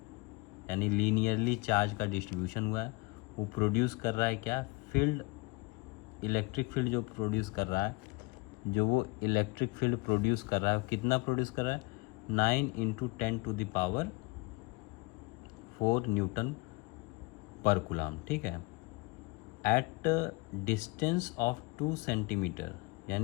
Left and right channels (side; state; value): right; quieter; 25.8 dB